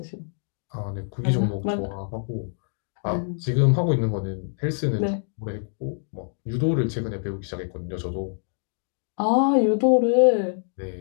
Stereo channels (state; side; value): silent; right; digital silence